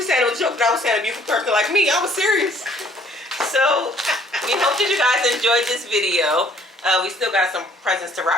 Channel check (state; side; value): normal; both; correlation 0.60